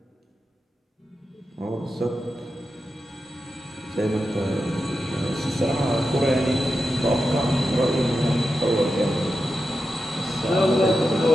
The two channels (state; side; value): normal; both; correlation 0.90